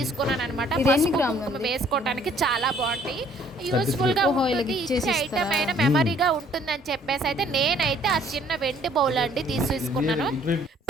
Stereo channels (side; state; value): both; normal; correlation 0.60